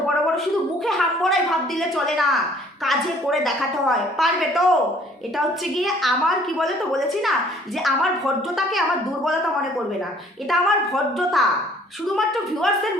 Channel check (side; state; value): both; normal; correlation 0.57